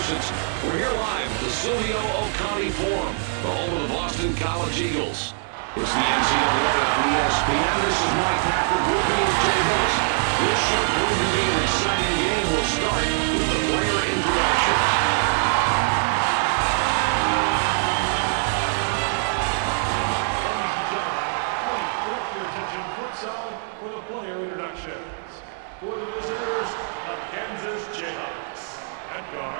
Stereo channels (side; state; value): left; silent; digital silence